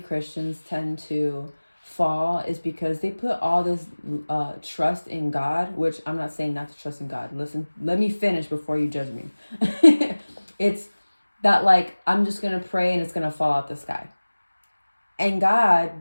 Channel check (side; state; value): both; inverted; correlation -1.00